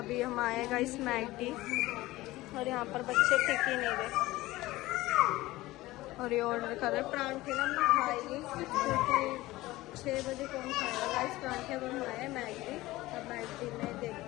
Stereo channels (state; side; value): quieter; right; 18.2 dB